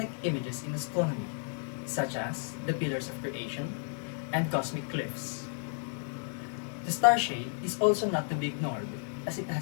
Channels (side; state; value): right; silent; 56 dB below the other